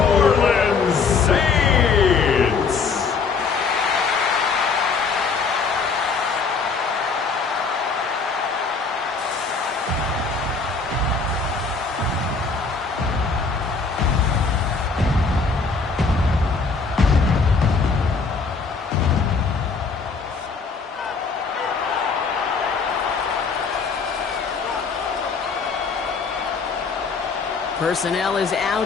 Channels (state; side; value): quieter; right; 4.8 dB